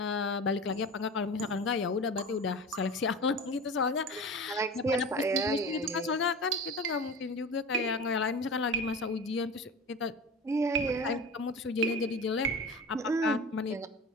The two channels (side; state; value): both; normal; correlation 0.32